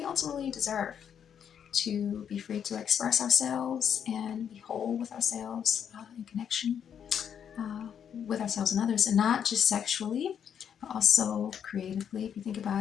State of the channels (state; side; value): quieter; right; 8.3 dB